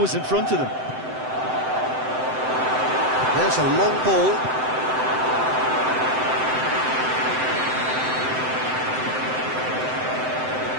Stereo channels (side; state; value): left; late; 7.8 ms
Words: in front of them. There's a long ball.